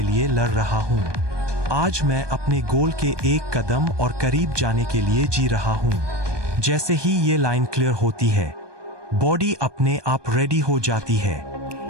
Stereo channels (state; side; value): late; left; 1.2 ms